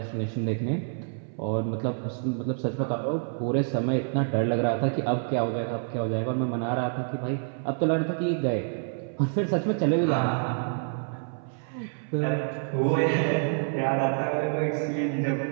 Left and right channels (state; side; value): silent; left; 60 dB below the other